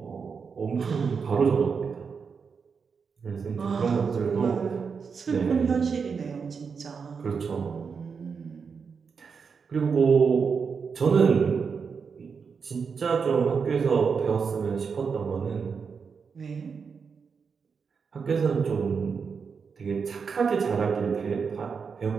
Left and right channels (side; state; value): left; quieter; 5.7 dB